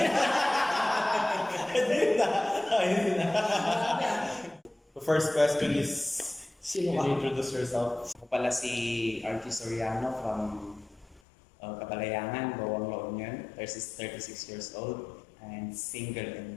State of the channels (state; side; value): drops out; right; at 11.2 s